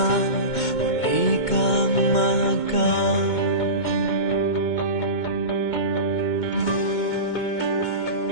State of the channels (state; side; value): late; right; 2.2 ms